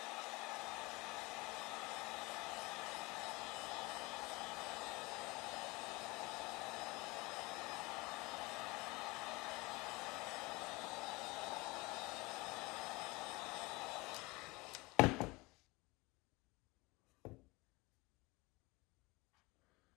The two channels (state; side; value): quieter; right; 23.8 dB